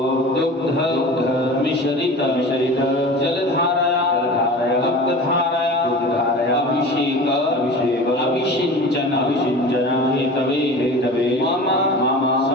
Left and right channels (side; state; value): both; normal; correlation 0.36